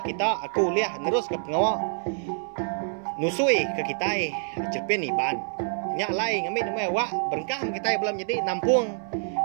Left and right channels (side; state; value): left; silent; 60 dB below the other